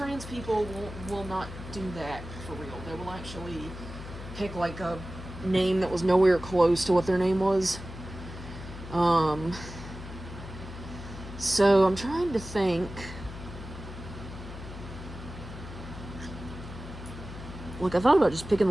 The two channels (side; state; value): left; noise; hum, 11 dB below the sound